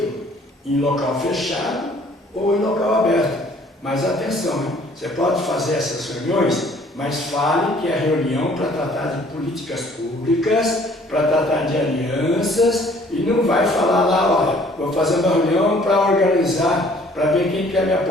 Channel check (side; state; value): both; normal; correlation 0.57